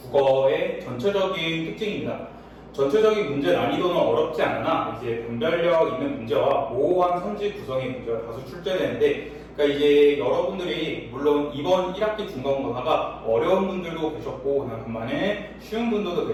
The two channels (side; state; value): both; identical; correlation 1.00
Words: 전체적인 특징입니다. 전체적인 문제 난이도는 어렵지 않으나 이제 분별력 있는 문제와 모호한 선지 구성의 문제가 다수 출제되는데, 그러니까 이제 여러분들이 물론 이번 1학기 중간고사가 어려운 분들도 계셨고 반면에 쉬운 분들도